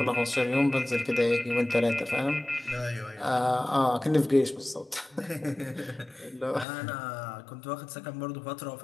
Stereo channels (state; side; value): drops out; right; at 6.7 s